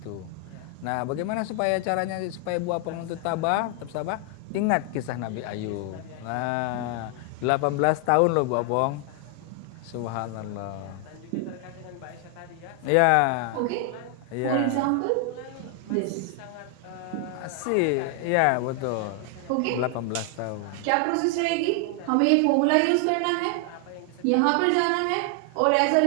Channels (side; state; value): both; different; correlation 0.00